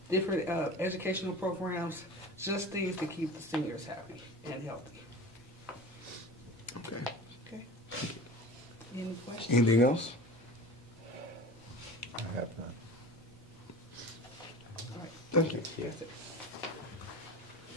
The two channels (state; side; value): normal; both; correlation 0.35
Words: different educational programs, just things to keep the seniors happy and healthy. Okay. Okay? Any questions? Anything else? I have none. All right. Thank you. That's it.